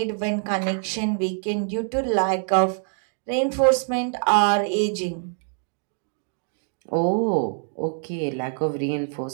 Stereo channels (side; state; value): left; silent; digital silence